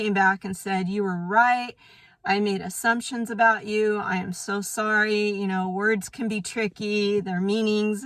back and said, you were right. I made assumptions about you. I am so sorry. You know, words can be tricky, their meanings,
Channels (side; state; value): both; identical; correlation 1.00